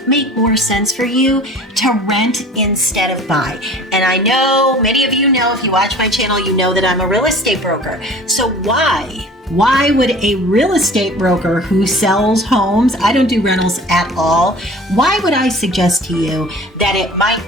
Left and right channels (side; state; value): both; normal; correlation 0.44